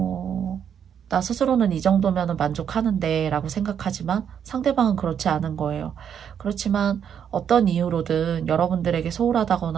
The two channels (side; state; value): left; quieter; 8.4 dB